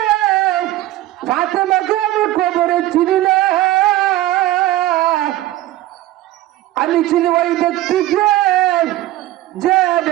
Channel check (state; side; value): quieter; left; 15.5 dB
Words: ফাতেমাকে আমি খবরে চিনি না আমি চিনি ওই ব্যক্তিকে যে